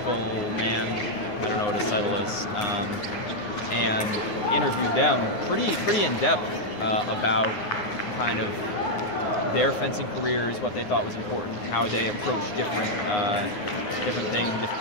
man, I don't know what his title is, and interviewed them pretty in depth about kind of their fencing careers, what they thought was important, how they approach different things,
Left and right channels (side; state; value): right; late; 9.6 ms